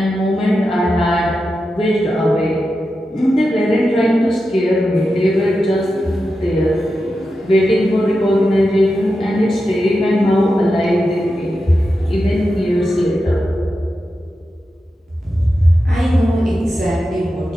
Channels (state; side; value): normal; both; correlation 0.90